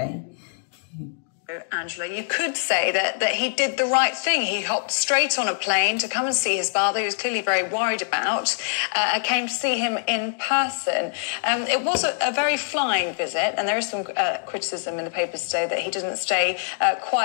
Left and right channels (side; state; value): right; silent; digital silence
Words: Angela, you could say that he did the right thing. He hopped straight on a plane to come and see his father, who was clearly very worried about, came to see him in person. It was a very flying visit, and there is some criticism in the papers today that he didn't stay